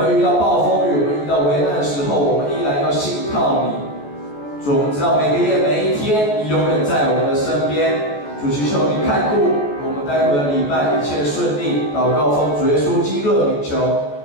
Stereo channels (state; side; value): late; right; 14 ms